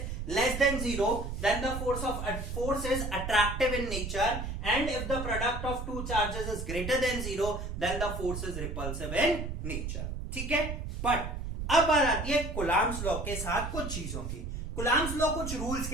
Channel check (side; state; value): right; noise; rumble, 5 dB below the sound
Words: less than 0, then the force is attractive in nature, and if the product of 2 charges is greater than 0, then the force is repulsive in nature। ठीक है, but अब बात आती है Coulomb's law के साथ कुछ चीजों की। कूलम्स लॉ कुछ रूल्स